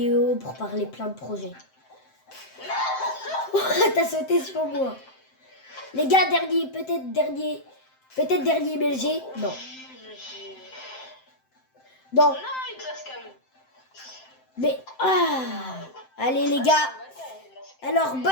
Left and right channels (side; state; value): right; late; 7.7 ms